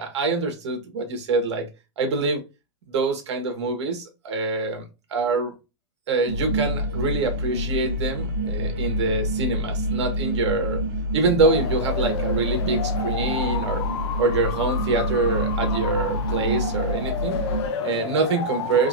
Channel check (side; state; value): both; normal; correlation -0.15